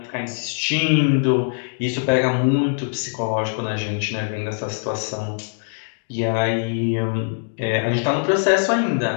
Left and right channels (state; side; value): silent; right; digital silence